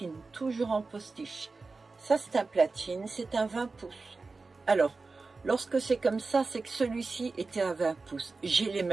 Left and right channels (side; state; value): left; quieter; 3.9 dB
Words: toujours en postiche. Ça, c'est un platine, c'est un 20 pouces. Alors, lorsque c'est comme ça, c'est que celui-ci était à 20 pouces. J'ai les